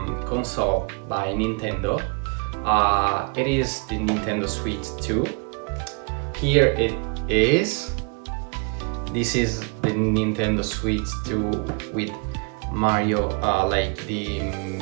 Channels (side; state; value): left; quieter; 35.6 dB